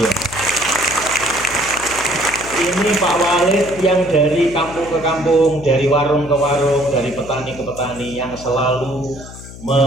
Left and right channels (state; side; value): noise; left; hum, 15 dB below the sound